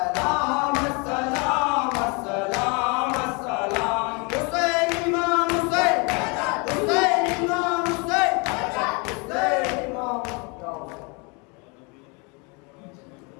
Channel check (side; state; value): right; quieter; 31.1 dB